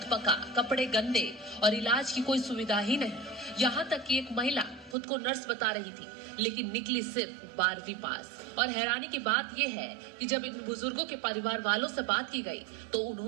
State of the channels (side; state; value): left; drops out; at 5.0 s